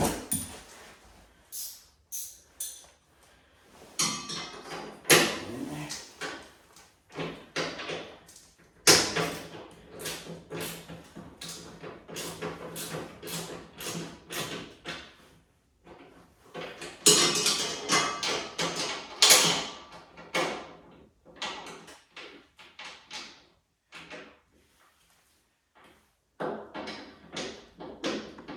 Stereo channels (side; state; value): both; identical; correlation 1.00